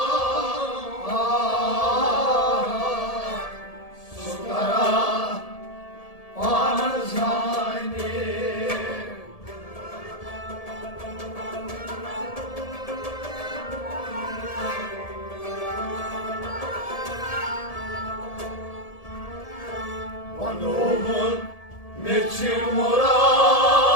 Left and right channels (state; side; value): late; right; 1.7 ms